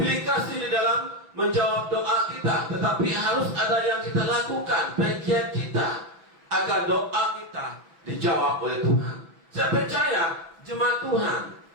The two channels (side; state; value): left; late; 6.0 ms